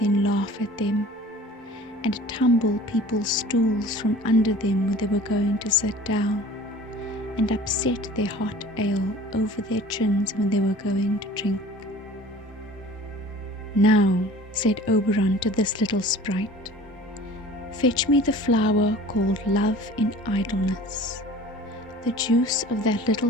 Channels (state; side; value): normal; both; correlation 0.45